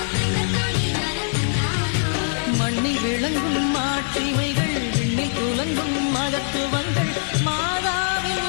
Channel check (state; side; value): silent; right; digital silence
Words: மண்ணில் விளங்கும் மாட்சிமைகள் விண்ணில் துலங்கும் மகத்துவங்கள் மாதாவின்